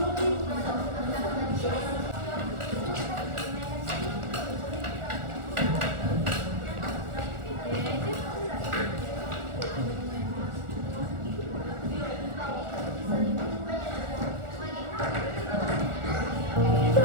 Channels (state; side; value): late; left; 1.4 ms